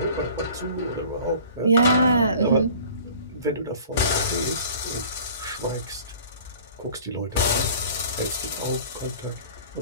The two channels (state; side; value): inverted; both; correlation -0.47